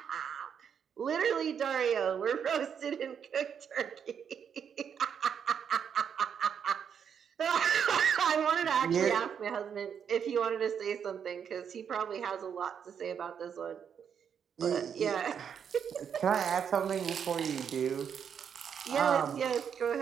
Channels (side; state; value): left; quieter; 7.6 dB